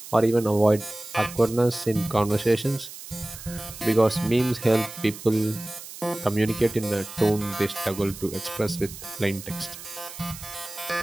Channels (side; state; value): right; noise; hiss, 14 dB below the sound